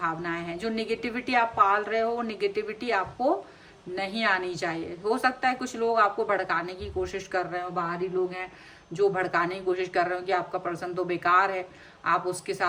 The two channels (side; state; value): both; identical; correlation 1.00